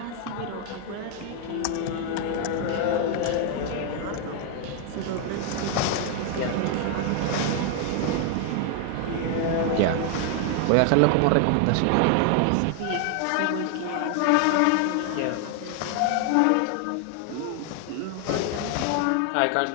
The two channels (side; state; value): both; different; correlation 0.00